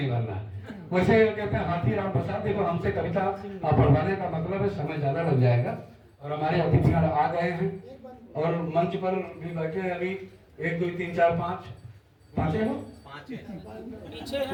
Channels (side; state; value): both; identical; correlation 1.00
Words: भर रहा। वैसे कहते हैं हाथी राम प्रसाद, देखो हमसे कविता पढ़वाने का मतलब है समय ज्यादा लग जाएगा, और हमारे अतिथि आ गए हैं और मंच पर भी बैठे हैं। अभी 1 2 3 4 5 पांचे हो, पीछे